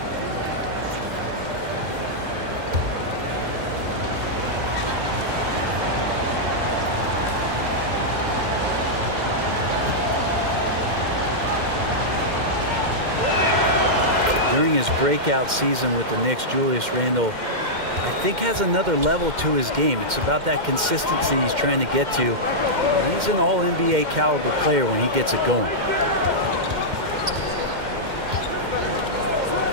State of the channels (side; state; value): left; late; 2.1 ms